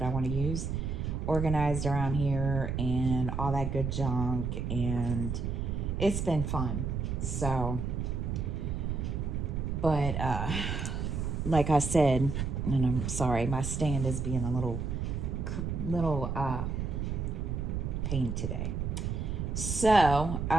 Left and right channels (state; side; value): noise; right; rumble, 2 dB below the sound